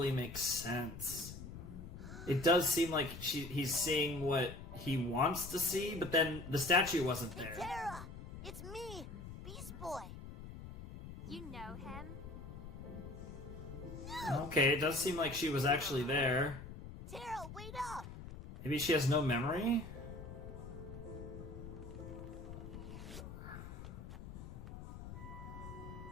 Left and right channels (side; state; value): left; noise; rumble, 11 dB below the sound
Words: make sense. It does seem like he's seeing what he wants to see, but then the statue wasn't there. Tara! It's me, Beast Boy. You know him? Okay, it does seem like she was actually there. Tara, wait up! Maybe she has no memory?